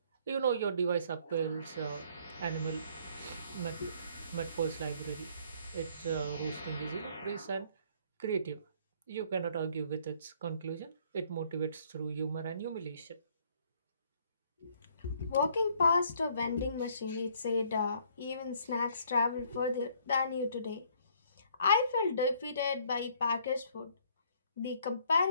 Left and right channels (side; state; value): both; inverted; correlation -0.62